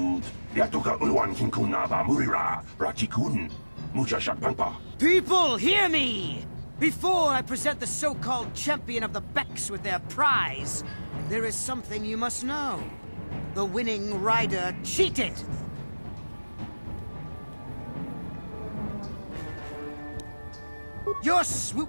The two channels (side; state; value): both; inverted; correlation -1.00